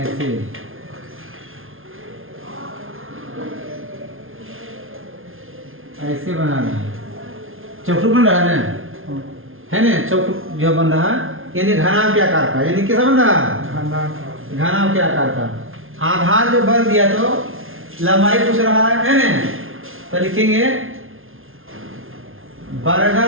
ऐसे बना रहा है। चौखुट बन रहा है ना चौखुट जो बन रहा है यानी घनाभ के आकार का। यानी कैसा बन रहा है? घनाभ के आकार का। आधार जो बल दिया तो लंबाई पूछ रहा है ना तो लिखेंगे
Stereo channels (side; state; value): left; late; 0.60 ms